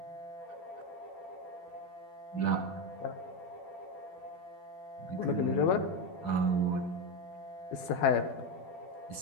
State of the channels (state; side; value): late; right; 12 ms